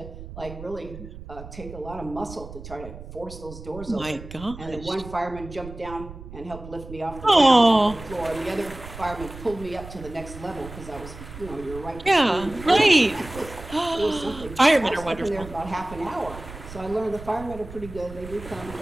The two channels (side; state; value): right; noise; rumble, 14 dB below the sound